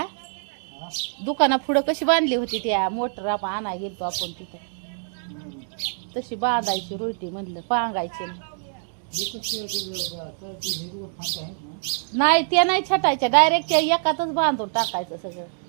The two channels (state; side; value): silent; left; 60 dB below the other